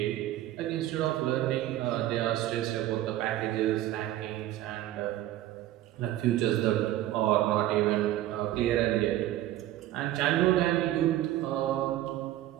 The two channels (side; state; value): left; quieter; 14.0 dB